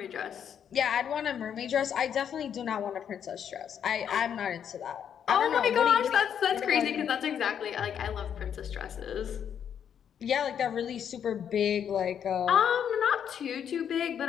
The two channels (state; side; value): quieter; right; 8.5 dB